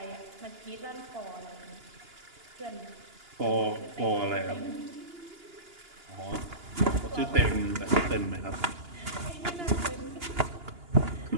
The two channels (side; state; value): left; late; 2.9 ms